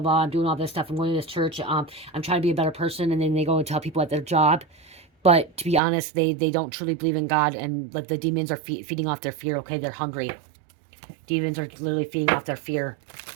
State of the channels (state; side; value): drops out; left; at 5.8 s